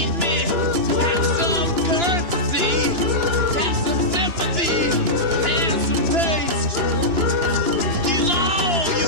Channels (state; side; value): late; left; 2.9 ms